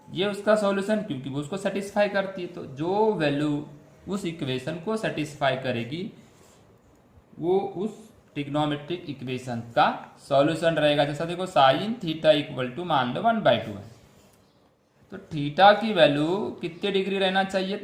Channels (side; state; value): both; identical; correlation 1.00